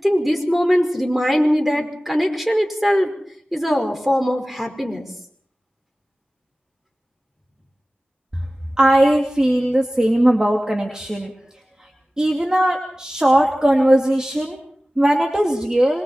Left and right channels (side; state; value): both; normal; correlation 0.97